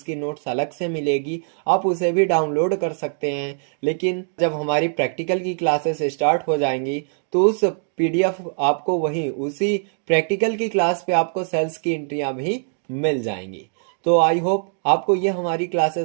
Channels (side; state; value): left; silent; digital silence